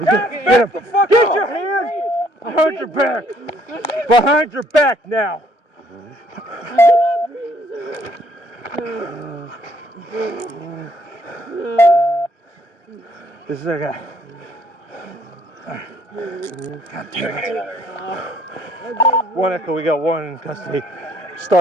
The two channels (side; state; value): right; late; 1.0 ms